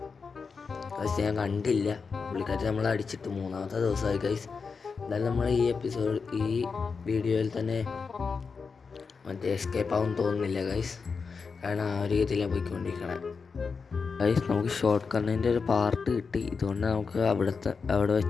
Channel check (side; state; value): right; quieter; 5.1 dB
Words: ഗൈസ്, ഞാൻ കണ്ടില്ല. പുള്ളിക്കാരി നമ്മളെ അടിച്ചിട്ട് 3-ാമത്തെ ദിവസമായി ഗൈസ്. എന്തായാലും നമ്മൾ ഈ വീഡിയോയിൽ തന്നെ മറ്റേ എസ്കേപ്പ് ആവും തോന്നുന്നില്ല ഗൈസ്, കാരണം ആ ഒരു രീതിയിലാണ് പോയിക്കൊണ്ടിരിക്കണേ ഗൈസ്. നമുക്ക് ഷോർട്ട് കണ്ണിൻ്റെ ഒരു പാർട്ട് കിട്ടി. ഇതുകൊണ്ട് നമുക്ക് അവിടെ